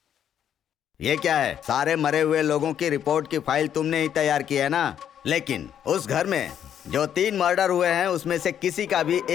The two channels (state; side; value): quieter; right; 9.4 dB